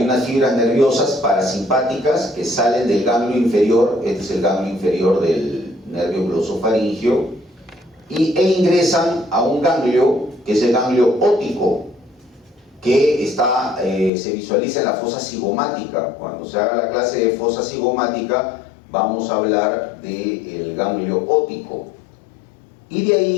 unas fibras nerviosas parasimpáticas que salen del ganglio inferior, este es el ganglio inferior del nervio glosofaringio, e ingresan a un ganglio que es el ganglio óptico, que se visualiza en la fosa cigomática. Cuando se haga la clase de fosa cigomática vamos a hablar del ganglio óptico. Y de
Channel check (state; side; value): drops out; right; at 14.1 s